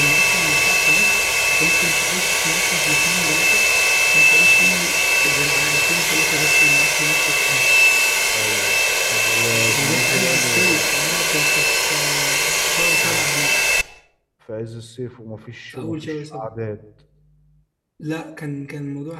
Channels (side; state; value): both; identical; correlation 1.00